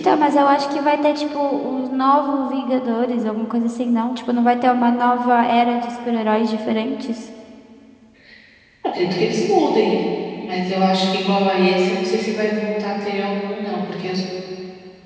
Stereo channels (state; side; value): identical; both; correlation 1.00